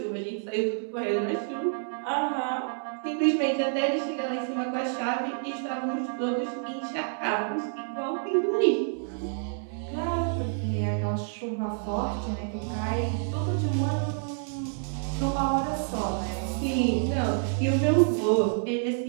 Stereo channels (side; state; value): left; silent; 59 dB below the other